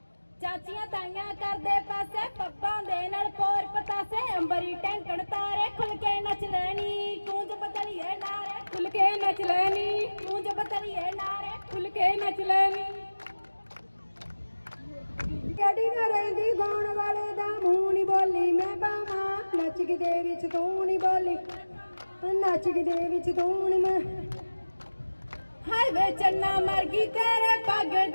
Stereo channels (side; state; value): both; inverted; correlation -1.00